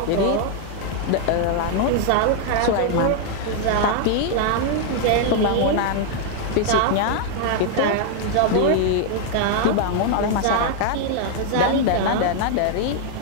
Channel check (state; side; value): different; both; correlation 0.00